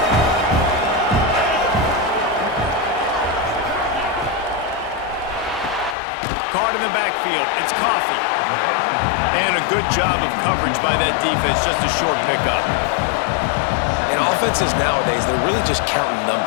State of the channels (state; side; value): drops out; right; at 6.0 s